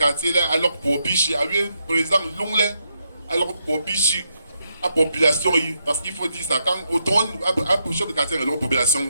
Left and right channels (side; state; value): both; inverted; correlation -0.81